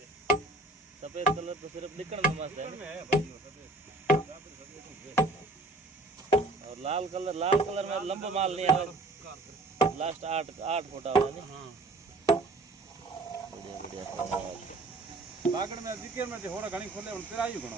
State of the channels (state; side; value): quieter; left; 3.1 dB